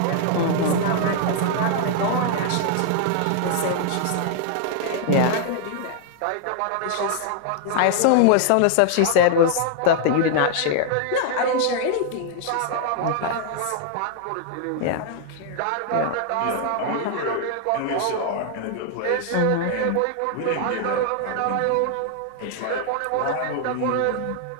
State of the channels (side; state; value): both; different; correlation 0.00